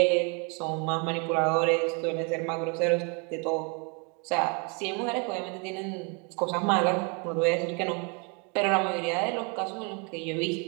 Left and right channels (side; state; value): left; quieter; 34.0 dB